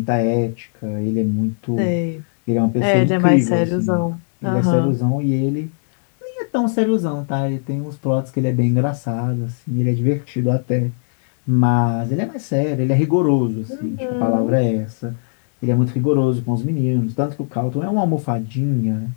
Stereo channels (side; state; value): right; silent; 65 dB below the other